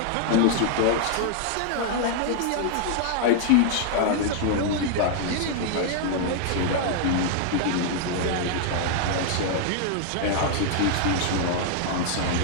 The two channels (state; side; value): different; both; correlation 0.00